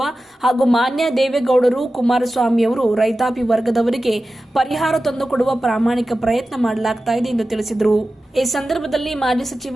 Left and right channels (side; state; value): both; normal; correlation 0.94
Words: ಹಾಗೂ ಮಾನ್ಯ ದೇವೇಗೌಡರು, ಕುಮಾರಸ್ವಾಮಿಯವರು ರೈತಾಪಿ ವರ್ಗದವರಿಗೆ ಪರಿಹಾರ ತಂದುಕೊಡುವ ಪ್ರಾಮಾಣಿಕ ಪ್ರಯತ್ನ ಮಾಡಲಾಗ್ತಾ ಇದೆ ಎಂದು ತಿಳಿಸಿದರು. ಈ ಸಂದರ್ಭದಲ್ಲಿ ಮಾಜಿ